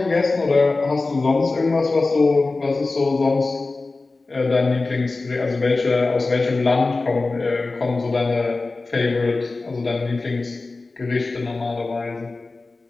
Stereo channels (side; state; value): right; quieter; 3.5 dB